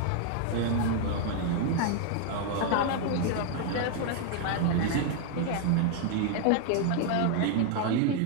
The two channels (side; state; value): both; different; correlation 0.00